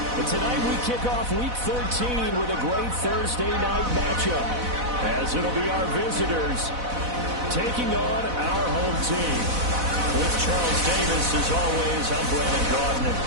But tonight we kick off Week 13 with a great Thursday night matchup, as it'll be our visitors taking on our home team. With Charles Davis, as always, I'm Brandon Gordon. And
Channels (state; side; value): late; left; 4.0 ms